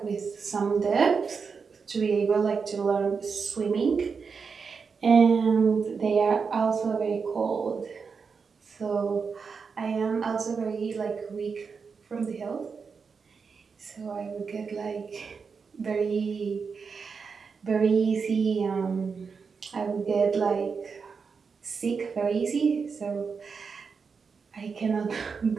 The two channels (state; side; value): quieter; left; 5.5 dB